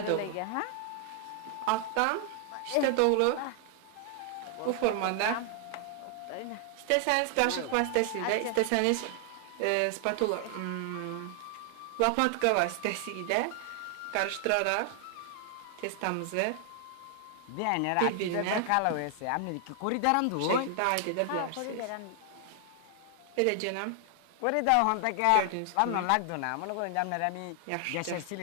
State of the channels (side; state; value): both; different; correlation 0.00